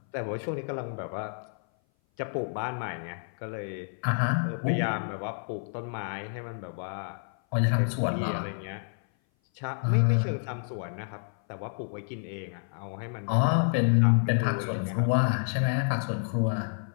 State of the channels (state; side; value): silent; right; 57 dB below the other